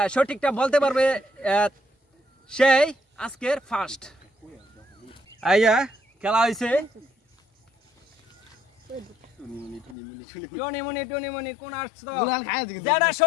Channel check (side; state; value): right; drops out; at 10.0 s